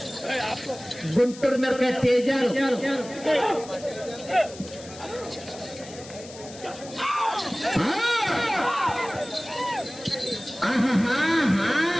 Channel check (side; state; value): left; noise; hiss, 17 dB below the sound